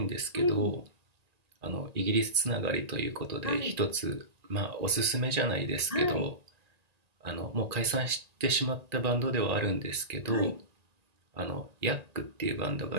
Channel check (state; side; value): late; left; 1.9 ms